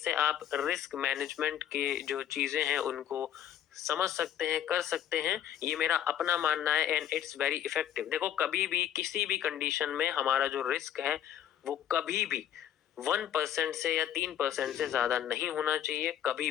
आप रिस्क मैनेजमेंट के जो चीजें हैं उनको समझ सकते हैं, कर सकते हैं। ये मेरा अपना मानना है एंड इट्स वेरी इफेक्टिव। देखो, कभी भी किसी भी कंडीशन में हमारा जो रिस्क है वो कभी भी 1% से या 3% से ज्यादा नहीं होना चाहिए, कभी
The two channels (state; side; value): quieter; right; 10.7 dB